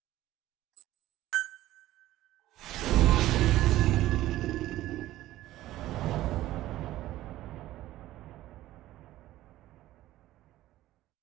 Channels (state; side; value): quieter; left; 15.2 dB